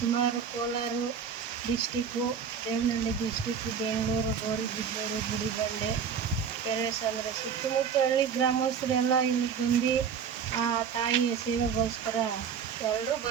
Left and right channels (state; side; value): quieter; left; 7.1 dB